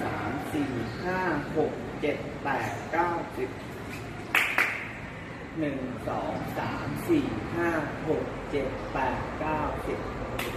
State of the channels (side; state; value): both; identical; correlation 1.00